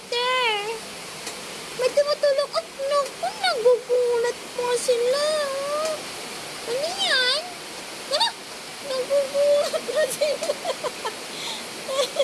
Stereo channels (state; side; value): identical; both; correlation 1.00